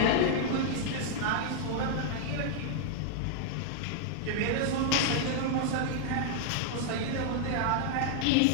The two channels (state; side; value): different; both; correlation -0.01